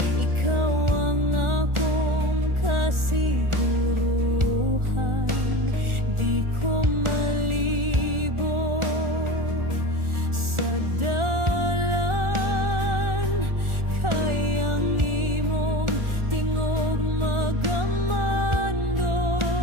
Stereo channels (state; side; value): late; left; 1.4 ms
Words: ikaw ang akong kasiguruhan. Di ko malibo sa dalan, kayang imong tingog magamando.